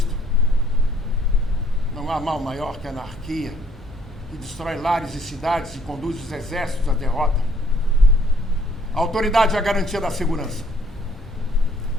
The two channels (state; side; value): normal; both; correlation 0.61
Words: Não há mal maior que a anarquia, que destrói lares e cidades e conduz os exércitos à derrota. A autoridade é a garantia da segurança.